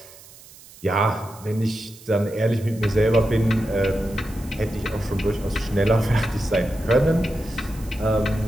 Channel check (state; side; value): noise; right; hiss, 21 dB below the sound